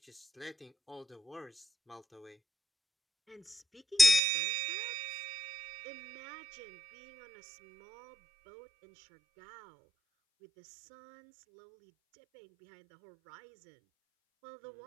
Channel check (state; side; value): drops out; left; at 4.2 s